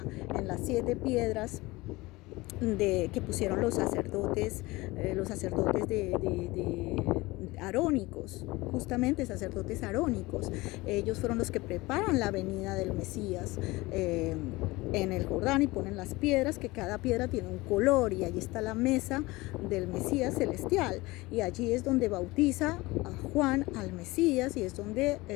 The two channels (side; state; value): right; quieter; 21.3 dB